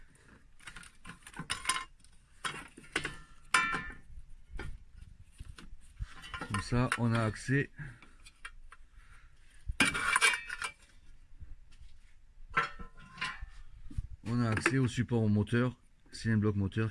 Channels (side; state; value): both; identical; correlation 1.00